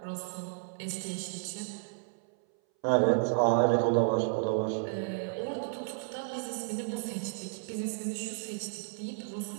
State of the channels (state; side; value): silent; left; 56 dB below the other